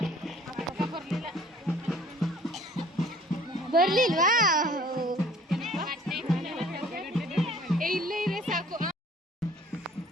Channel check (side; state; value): both; normal; correlation 0.53